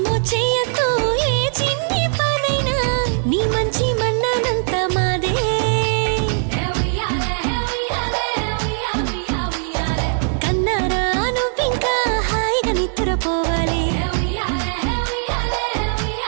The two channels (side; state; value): left; silent; digital silence